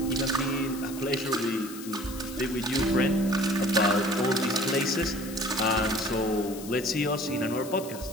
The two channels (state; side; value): noise; left; hiss, 14 dB below the sound